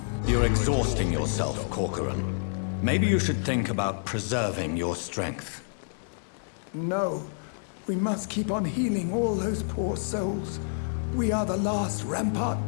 You're exhausting yourself, Corcoran. Maybe you should think about preserving your strength. No. We must keep on healing all those poor souls. We are the last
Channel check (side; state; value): right; silent; digital silence